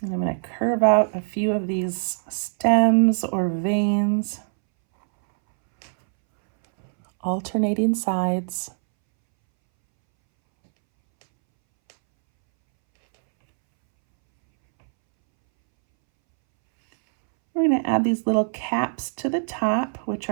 And I'm going to curve out a few of these stems or veins, alternating sides. We're going to add these little caps to the top, which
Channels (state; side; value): silent; left; 64 dB below the other